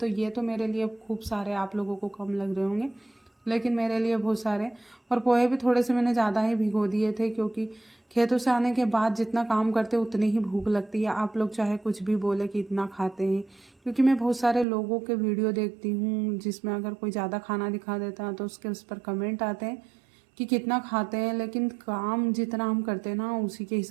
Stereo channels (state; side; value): drops out; left; at 14.7 s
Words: ये तो मेरे लिए खूब सारे, आप लोगों को कम लग रहे होंगे, लेकिन मेरे लिए बहुत सारे। और पोहे भी थोड़े से मैंने ज़्यादा ही भिगो दिए थे, क्योंकि खेतों से आने के बाद जितना काम करते उतनी ही भूख लगती है। आप लोग चाहे कुछ भी बोले कि इतना खाते हैं, क्योंकि मैं बहुत सारे लोगों के वीडियो देखती हूँ जिसमें अगर कोई ज़्यादा खाना दिखा देता है तो उसके उस पर कमेंट आते हैं कि कितना खाते हैं, लेकिन काम जितना हम करते हैं ना उसी के